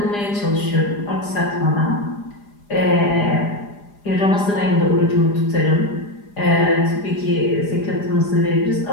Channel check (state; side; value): late; right; 4.9 ms